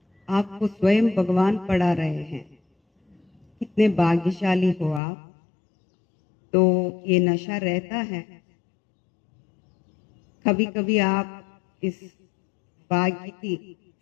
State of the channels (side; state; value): right; drops out; at 5.0 s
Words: आपको स्वयं भगवान पढ़ा रहे हैं, कितने भाग्यशाली हो आप। तो ये नशा रहता है, कभी कभी आप इस भाग्य की